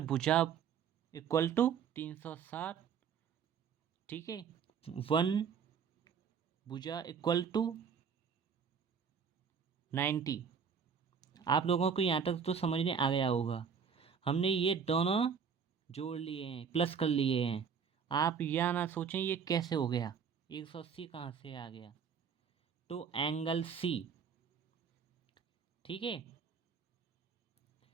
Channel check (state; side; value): quieter; left; 6.7 dB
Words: भुजा इक्वल टू 360, ठीक है। 1 भुजा इक्वल टू 90। आप लोगों को यहाँ तक तो समझ में आ गया होगा। हमने ये दोनों जोड़ लिए हैं, प्लस कर लिए हैं। आप यह ना सोचें ये कैसे हो गया, 180 कहाँ से आ गया। तो एंगल सी, ठीक है,